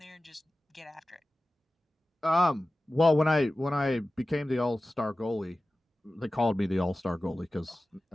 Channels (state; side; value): normal; both; correlation 0.95